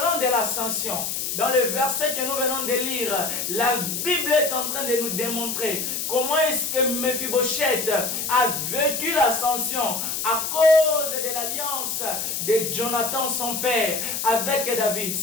de l'ascension. Dans le verset que nous venons de lire, la Bible est en train de nous démontrer comment est-ce que Mephibosheth a vécu l'ascension à cause de l'alliance de Jonathan, son père, avec David.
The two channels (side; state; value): left; noise; hiss, 2 dB below the sound